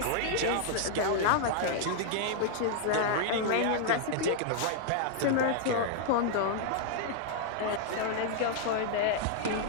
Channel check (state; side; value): different; both; correlation -0.01